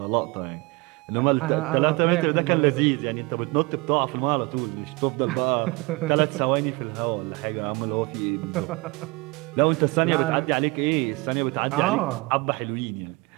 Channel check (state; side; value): quieter; left; 25.4 dB